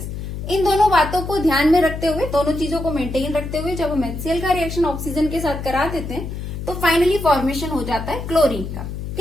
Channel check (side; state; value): left; noise; hum, 7 dB below the sound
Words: इन दोनों बातों को ध्यान में रखते हुए, दोनों चीजों को मेंटेन रखते हुए जब हम HCl का रिएक्शन ऑक्सीजन के साथ करा देते हैं तो फाइनली फॉर्मेशन हो जाता है क्लोरीन का।